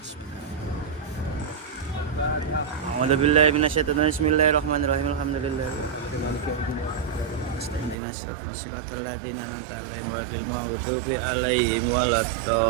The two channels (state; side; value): drops out; left; at 8.0 s